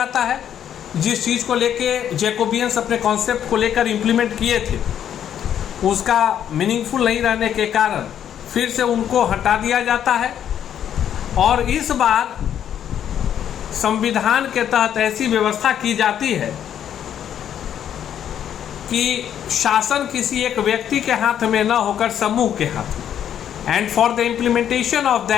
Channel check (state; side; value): quieter; right; 9.7 dB